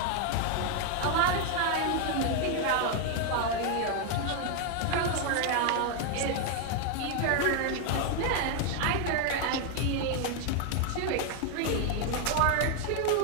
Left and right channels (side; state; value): both; different; correlation 0.01